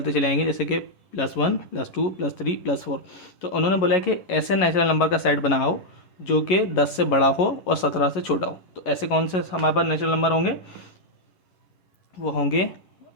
चले आएंगे, जैसे कि +1 +2 +3 +4। तो उन्होंने बोला है कि ऐसे नेचुरल नंबर का सेट बनाओ जो कि 10 से बड़ा हो और 17 से छोटा हो। तो ऐसे कौन से हमारे पास नेचुरल नंबर होंगे? वो होंगे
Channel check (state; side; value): late; right; 11 ms